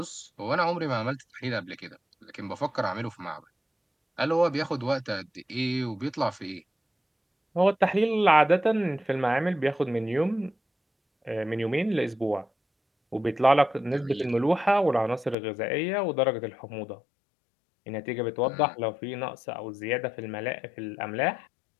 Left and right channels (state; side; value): drops out; right; at 15.4 s